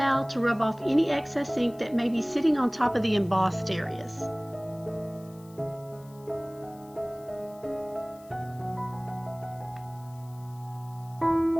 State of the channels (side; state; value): left; noise; hiss, 26 dB below the sound